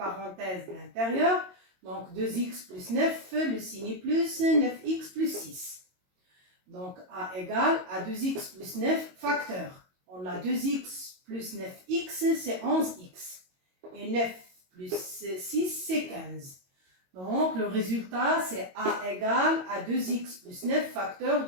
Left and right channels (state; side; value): late; left; 22 ms